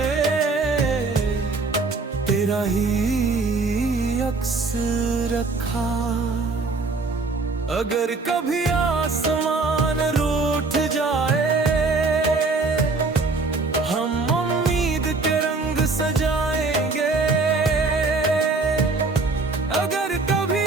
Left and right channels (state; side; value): quieter; left; 3.8 dB